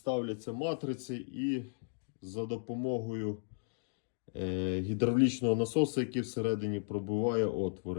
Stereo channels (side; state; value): right; silent; digital silence